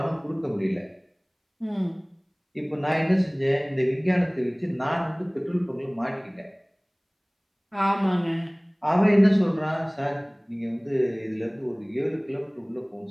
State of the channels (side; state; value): both; identical; correlation 1.00